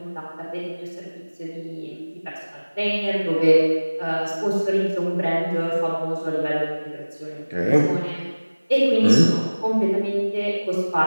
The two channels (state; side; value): inverted; both; correlation -1.00